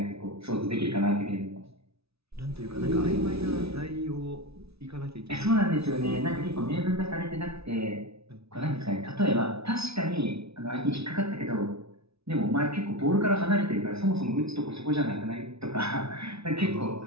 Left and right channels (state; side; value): late; left; 0.78 ms